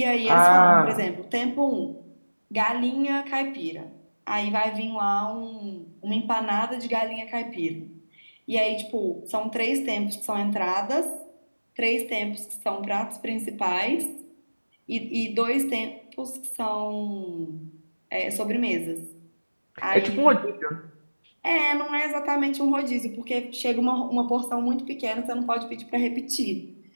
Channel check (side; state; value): both; inverted; correlation -1.00